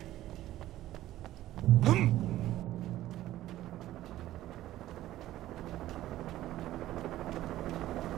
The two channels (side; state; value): left; quieter; 14.5 dB